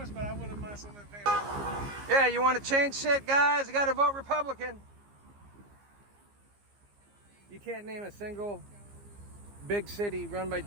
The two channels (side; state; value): left; late; 15 ms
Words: but I wouldn't mind someone paying. Yeah, you want to change shit, guys? You got to vote Republican. You can't name a single big city run by